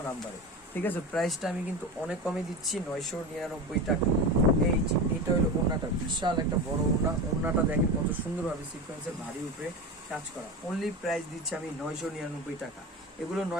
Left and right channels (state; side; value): normal; both; correlation 0.25